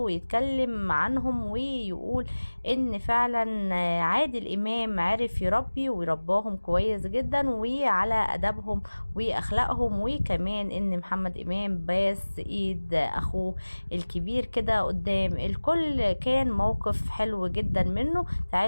يتكلم عنهم ويقول ان فعلا عادل امام عرف يربي ويرباهم كويس جدا وعلى ادبهم واخلاقهم، وكمان ان محمد امام باس ايد اخوه الكبير كده قدام الكل. كان موقف حلو جدا منه.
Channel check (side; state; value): both; inverted; correlation -1.00